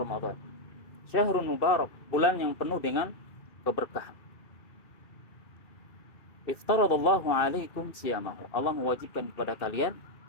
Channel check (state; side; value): late; right; 2.6 ms